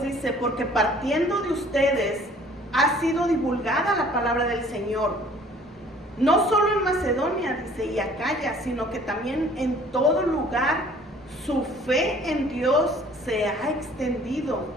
dice, porque partiendo de ustedes ha sido divulgada la palabra del Señor, no solo en Macedonia, dice, y Acaya, sino que también en todo lugar su fe en Dios se ha extendido,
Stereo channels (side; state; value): both; normal; correlation 0.54